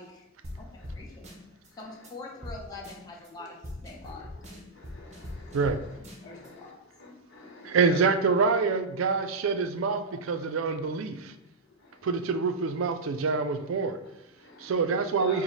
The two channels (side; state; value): left; quieter; 4.1 dB